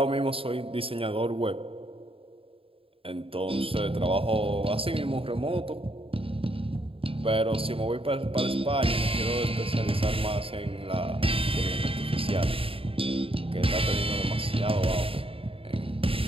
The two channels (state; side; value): late; left; 0.27 ms